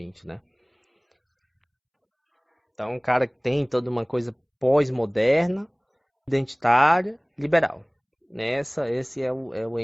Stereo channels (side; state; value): both; identical; correlation 1.00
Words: né? Então, um cara que tem toda uma coisa pós-moderna, identitária, liberal. Esse é o